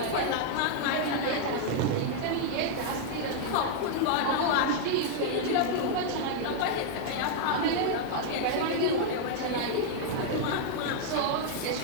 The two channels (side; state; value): both; different; correlation 0.00